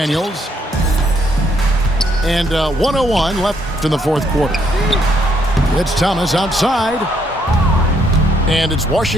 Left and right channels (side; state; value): both; normal; correlation 0.72